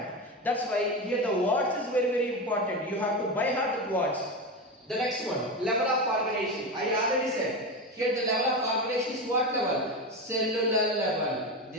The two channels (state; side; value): normal; both; correlation 0.19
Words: That's why here the words is very, very important. You have to by heart the words. The next one, level of organization. I already said Here the level of organization is what level? Cellular level.